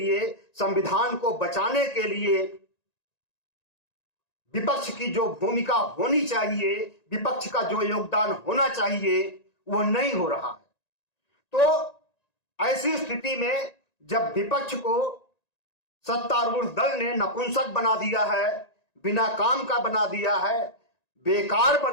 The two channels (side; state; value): right; late; 1.9 ms